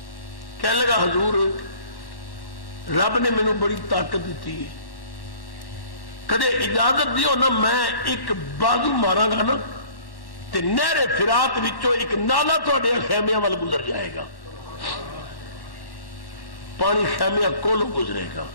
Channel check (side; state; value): right; late; 1.1 ms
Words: کہنے لگا حضور رب نے مینوں بڑی طاقت دیتی ہے، کدے اجازت دیو نا میں ایک بازو ماراں گا نا تے نہر فرات وچوں ایک نالا تہاڈے خیمیاں وال گزر جائے گا، پانی خیمیاں کولوں گزرے گا۔